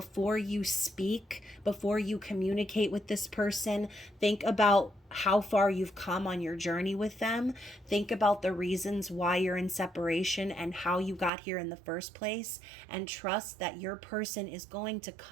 you speak, before you communicate with this person, think about how far you've come on your journey with them. Think about the reasons why you're in separation and how you got here in the first place, and trust that your person is going to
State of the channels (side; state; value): left; drops out; at 11.3 s